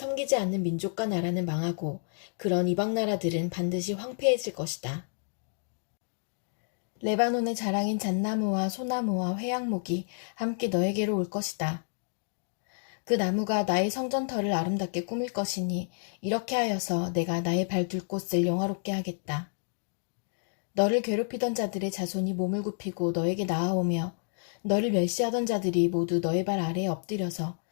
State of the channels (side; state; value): right; silent; digital silence